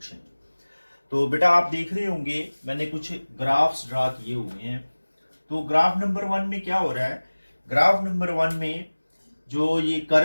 तो बेटा आप देख रहे होंगे मैंने कुछ graphs draw किए हुए हैं। तो ग्राफ नंबर 1 में क्या हो रहा है, ग्राफ नंबर 1 में जो ये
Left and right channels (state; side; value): inverted; both; correlation -1.00